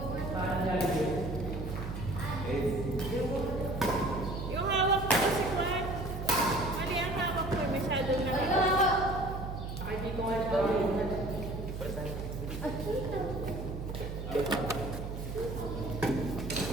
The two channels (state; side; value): noise; right; hum, 6 dB below the sound